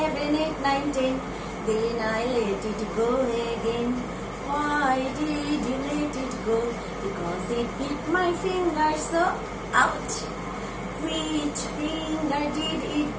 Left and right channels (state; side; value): identical; both; correlation 1.00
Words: 8 9 10 Then I let it go again. Why did you let it go? Because it bit my finger so. Ouch! Which finger did it